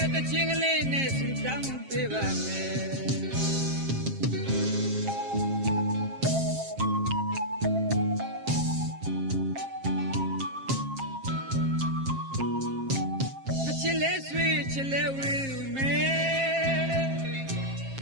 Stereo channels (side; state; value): left; late; 7.5 ms